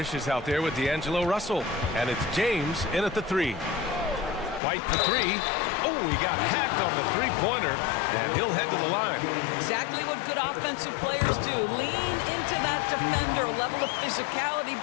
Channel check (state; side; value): drops out; right; at 4.6 s